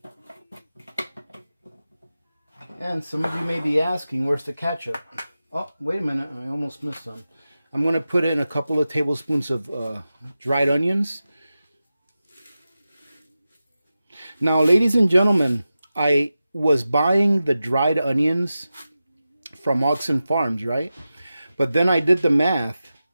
And some of you may be asking, where's the ketchup? Oh, wait a minute. I almost missed some. I'm going to put in a couple of tablespoons of dried onions. Now, ladies and gentlemen, I was buying the dried onions from Oxen Farms, right? But then I did the math,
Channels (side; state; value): both; inverted; correlation -0.93